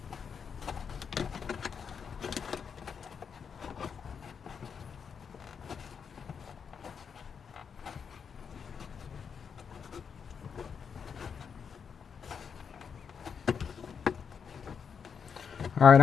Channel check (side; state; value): right; quieter; 6.6 dB